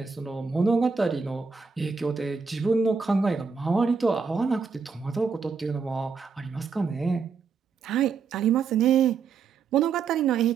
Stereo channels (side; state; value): left; quieter; 5.3 dB